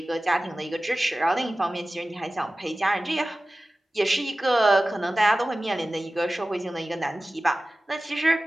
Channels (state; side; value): normal; both; correlation 0.96